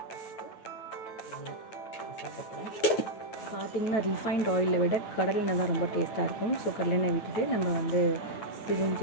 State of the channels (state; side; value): late; right; 9.2 ms